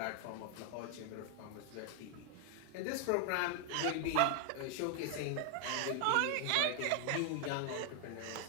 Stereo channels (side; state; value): both; different; correlation 0.00